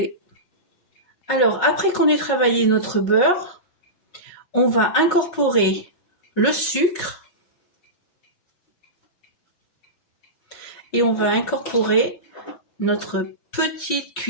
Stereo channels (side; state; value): right; late; 5.4 ms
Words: Alors, après qu'on ait travaillé notre beurre, on va incorporer le sucre et on va incorporer notre petite